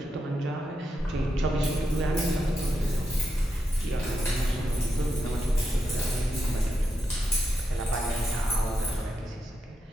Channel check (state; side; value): normal; both; correlation 0.85